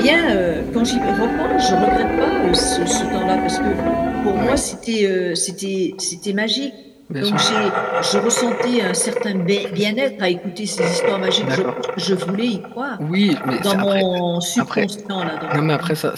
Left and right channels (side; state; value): both; identical; correlation 1.00